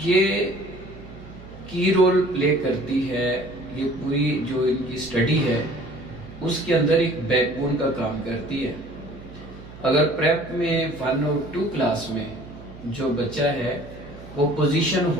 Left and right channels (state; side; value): noise; right; hum, 17 dB below the sound